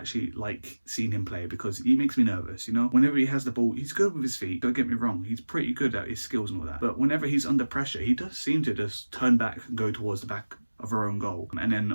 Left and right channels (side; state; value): both; inverted; correlation -1.00